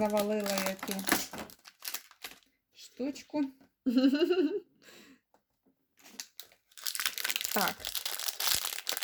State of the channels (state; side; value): identical; both; correlation 1.00